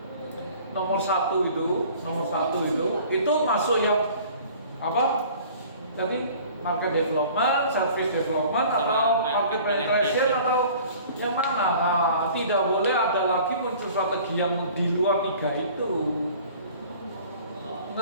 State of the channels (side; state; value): both; inverted; correlation -0.49